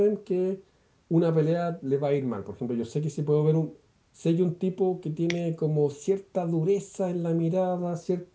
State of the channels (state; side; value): identical; both; correlation 1.00